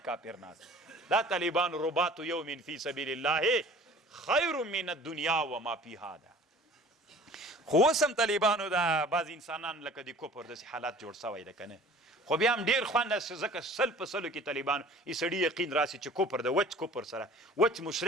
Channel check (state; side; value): normal; both; correlation 0.47